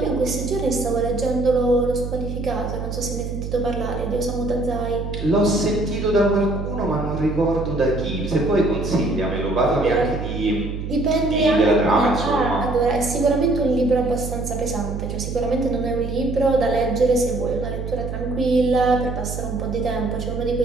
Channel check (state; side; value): noise; right; hum, 6 dB below the sound